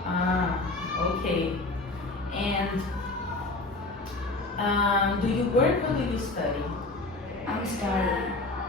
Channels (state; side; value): quieter; right; 3.1 dB